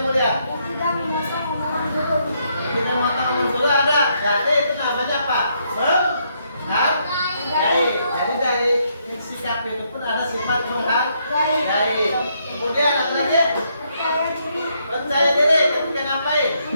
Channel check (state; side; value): inverted; both; correlation -0.75